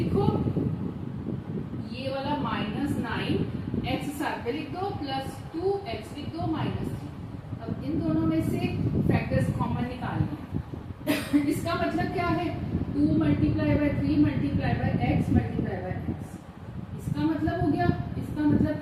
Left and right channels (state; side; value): identical; both; correlation 1.00